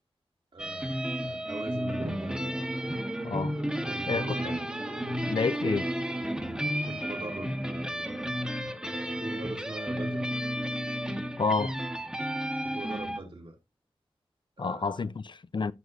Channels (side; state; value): both; normal; correlation 0.81